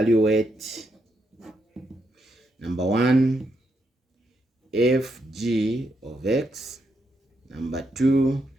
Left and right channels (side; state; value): both; normal; correlation 0.80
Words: number 1 fg of x, number 2